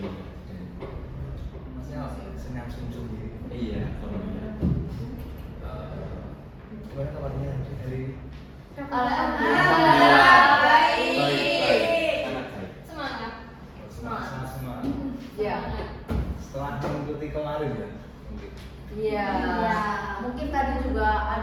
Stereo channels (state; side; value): identical; both; correlation 1.00